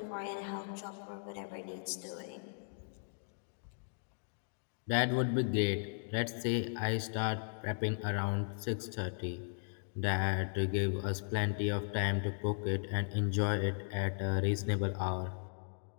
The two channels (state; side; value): silent; right; digital silence